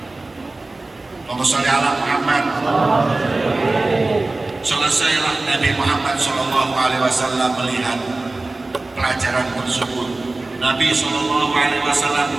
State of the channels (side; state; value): left; quieter; 3.1 dB